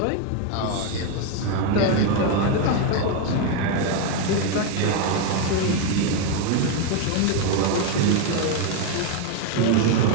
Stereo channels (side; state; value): both; different; correlation 0.02